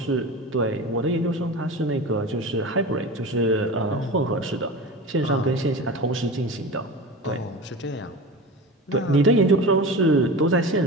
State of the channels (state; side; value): normal; both; correlation 0.30